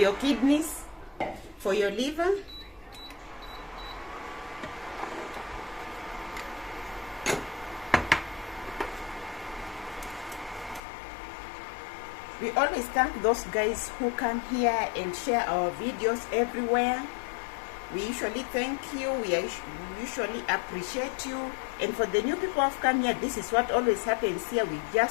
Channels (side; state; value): right; drops out; at 10.8 s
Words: kidneys, for your liver. We always thank those guys who come here and share our videos everywhere. We usually thank you. We usually appreciate you. And for the new people who have come here, this is what always happens here. We